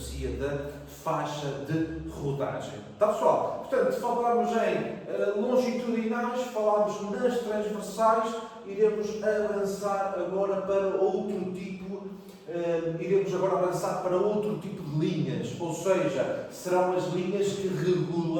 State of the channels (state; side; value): identical; both; correlation 1.00